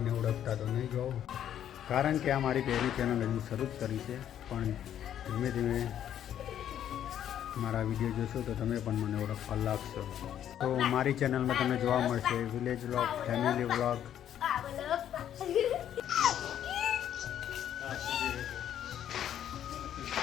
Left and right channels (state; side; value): quieter; right; 10.4 dB